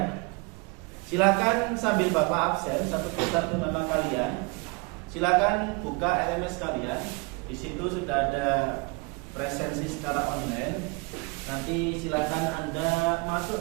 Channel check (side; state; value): left; quieter; 29.4 dB